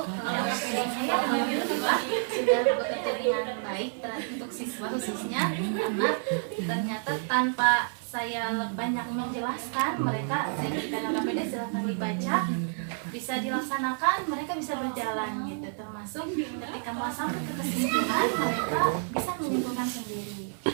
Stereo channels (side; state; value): left; silent; 58 dB below the other